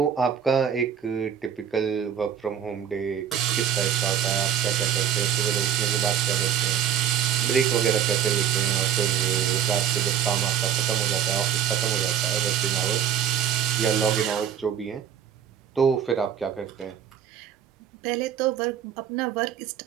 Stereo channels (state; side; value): quieter; left; 9.1 dB